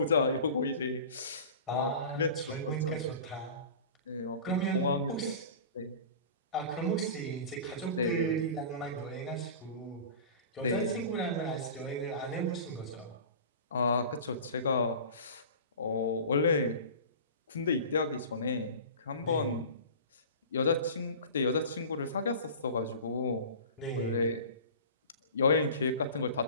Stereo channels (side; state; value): both; inverted; correlation -0.37